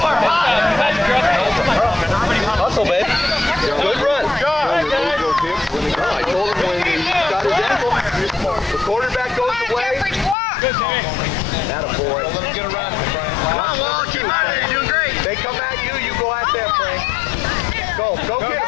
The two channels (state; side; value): drops out; right; at 10.4 s